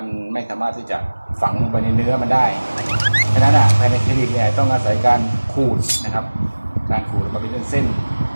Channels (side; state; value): both; inverted; correlation -1.00